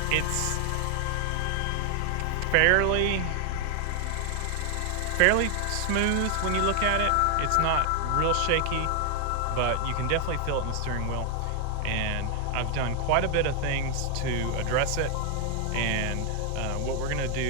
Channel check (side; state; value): both; different; correlation 0.00